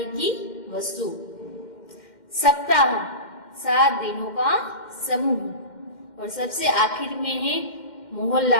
की वस्तु। सप्ताह 7 दिनों का समूह। और सबसे आखिर में है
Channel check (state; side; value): late; right; 2.1 ms